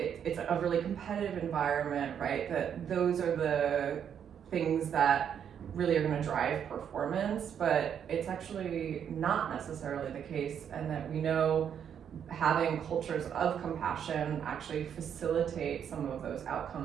a really competitive environment, right, that those are the things that really are going to drive performance, but it's actually not necessarily the case, and that we know having cultures of compassion actually facilitate some of those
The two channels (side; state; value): left; quieter; 8.4 dB